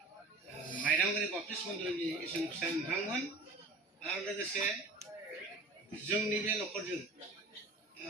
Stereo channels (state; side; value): quieter; left; 3.1 dB